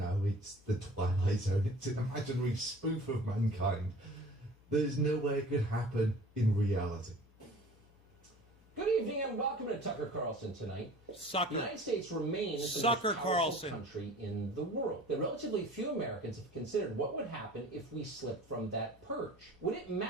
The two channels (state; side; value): normal; both; correlation 0.45